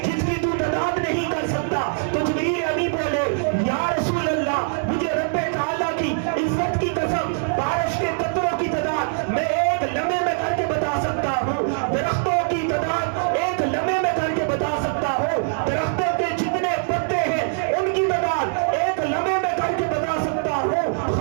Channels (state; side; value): silent; left; digital silence